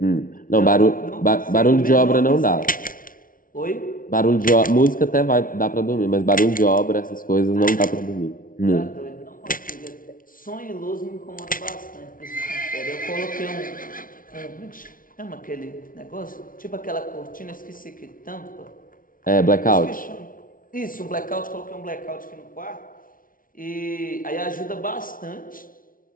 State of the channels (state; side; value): late; right; 0.40 ms